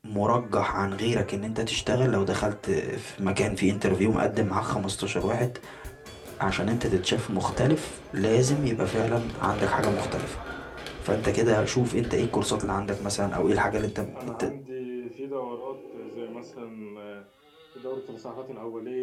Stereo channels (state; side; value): identical; both; correlation 1.00